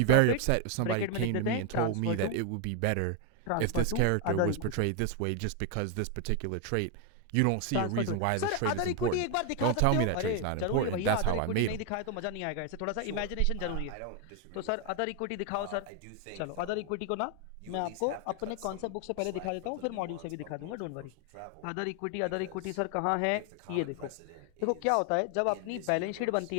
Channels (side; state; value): both; different; correlation 0.00